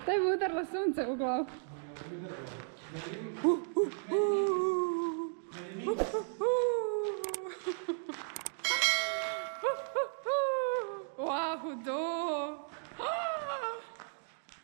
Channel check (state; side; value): silent; left; digital silence